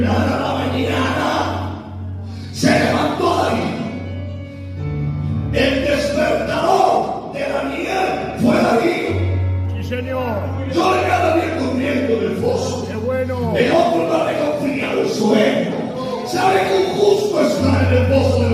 la mañana, se levantó Darío. El despertador de Daniel fue Darío. Sí, señor. Yo le cada día durmiendo del foso. Qué bueno. El otro no le confía el sueño. Sabe que un justo está en el pozo de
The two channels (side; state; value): both; identical; correlation 1.00